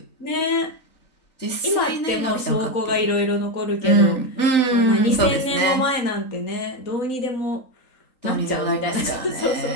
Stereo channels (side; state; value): right; late; 3.9 ms